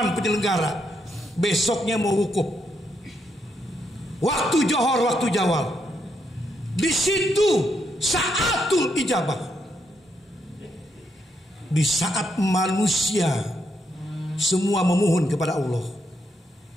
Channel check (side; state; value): both; normal; correlation 0.79